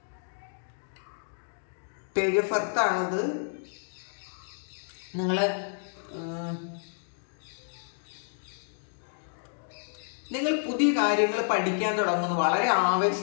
പേജ് ഓഫ് എർത്ത് ആണത്. നിങ്ങൾ പുതിയ കാര്യങ്ങൾ പഠിക്കാൻ തുടങ്ങുന്നു, വളരെ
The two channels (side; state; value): right; silent; digital silence